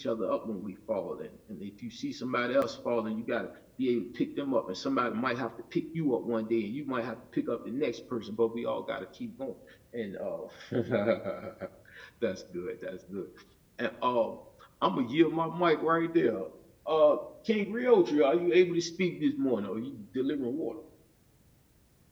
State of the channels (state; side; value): identical; both; correlation 1.00